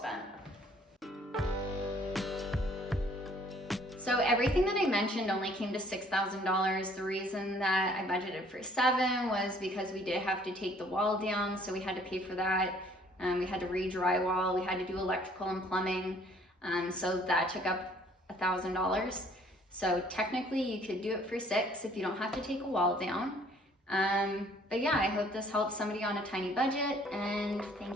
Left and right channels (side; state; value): both; normal; correlation 0.59